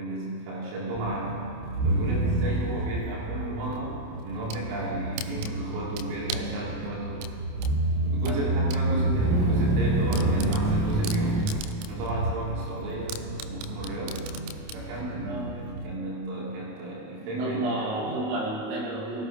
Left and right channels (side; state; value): left; late; 28 ms